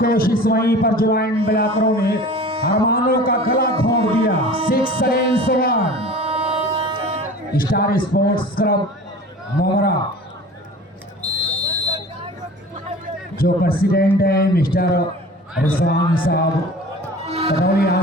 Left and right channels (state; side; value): normal; both; correlation 0.40